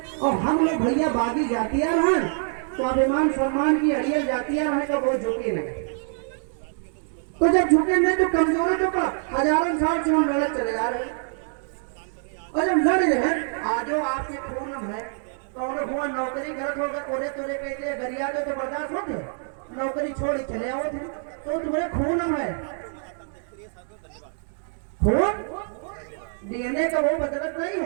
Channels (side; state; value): left; silent; 57 dB below the other